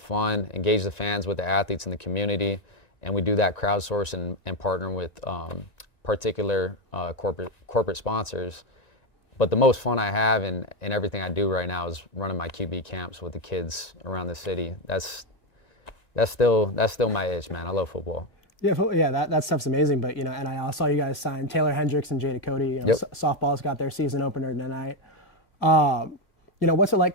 engage the fans with the athletes in the community, and we do that crowdsource and partner with particular corporate sponsors. But the most fun I have in everything I do right now is running my QB camps with the kids around the city. That's still my itch, man. I love football. Yeah, that stuff's amazing. But and I saw you guys sign Taylor Hendricks and Jada Cody. Yep. Softball's got their season opener tonight. What's it like,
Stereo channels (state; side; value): late; right; 1.9 ms